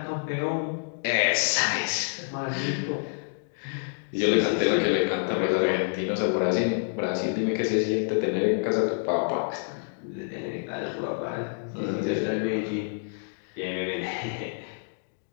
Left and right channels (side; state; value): right; silent; digital silence